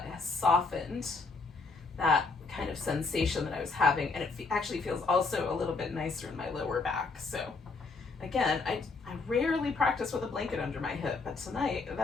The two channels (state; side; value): quieter; right; 4.0 dB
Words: has softened that kind of sensation that I was having, and it actually feels also a little bit nicer in my lower back. So again, I rarely practice with a blanket under my hip, but tonight